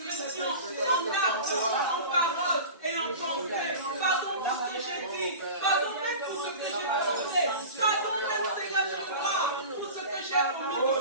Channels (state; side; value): inverted; both; correlation -0.34